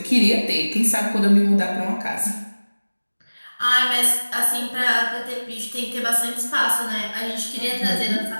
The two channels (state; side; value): inverted; both; correlation -1.00